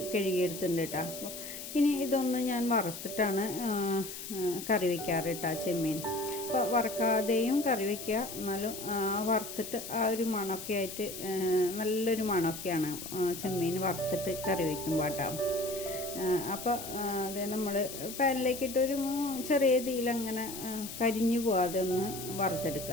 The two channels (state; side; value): noise; left; hiss, 9 dB below the sound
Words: കഴുകിയെടുത്തിട്ടുണ്ട് കേട്ടോ. ഇനി ഇതൊന്ന് ഞാൻ വറുത്തിട്ടാണ് കറി വയ്ക്കാറ് കേട്ടോ ചെമ്മീൻ. അപ്പോൾ വറക്കാതെയും കറി വയ്ക്കുക, എന്നാലും വറുത്തിട്ട് ആ ഒരു മണമൊക്കെ ആയിട്ട് നല്ലൊരു മണമൊക്കെയാണ് ചെമ്മീൻ വറുത്തിട്ട് കറി വയ്ക്കുമ്പോൾ കേട്ടോ. അപ്പോൾ അത് നമ്മൾ പാനിലേക്കിട്ടൊരു ചെറിയ തീയിലങ്ങനെ കരിഞ്ഞു പോകാതെ ഒന്ന്